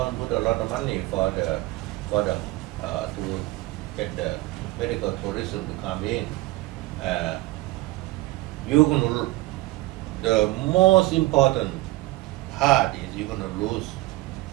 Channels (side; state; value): left; quieter; 19.5 dB